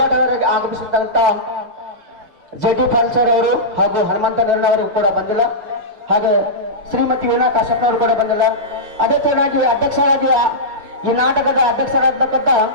ಆಗಮಿಸಿದಂತ ಜೆ.ಟಿ. ಫಾಲ್ಸರ್ ಅವರು ಹಾಗೂ ಹನುಮಂತ ನಿರ್ಣಯವರು ಕೂಡ ಬಂದಿಲ್ಲ. ಹಾಗೆ ಶ್ರೀಮತಿ ವೀಣಾ ಕಾಶ್ಯಪ್ನವರು ಕೂಡ ಬಂದಿಲ್ಲ. ಅದೇ ತರನಾಗಿ ಅಧ್ಯಕ್ಷರಾಗಿ ಈ ನಾಟಕದ ಅಧ್ಯಕ್ಷರಾಗತಕ್ಕಂಥ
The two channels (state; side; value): late; left; 6.7 ms